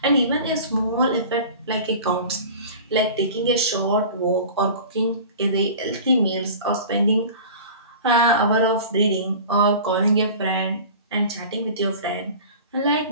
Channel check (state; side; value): inverted; both; correlation -0.39